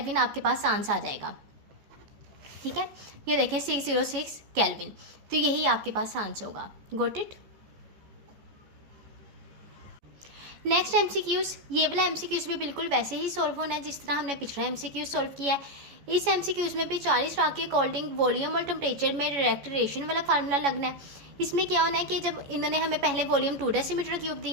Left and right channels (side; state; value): left; late; 14 ms